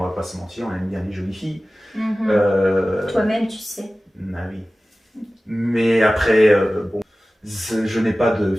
va pas se mentir, on aime bien les jolies filles. Toi-même, tu sais. Ah oui. Mais après, bon, je n'ai pas de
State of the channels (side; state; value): both; normal; correlation 0.96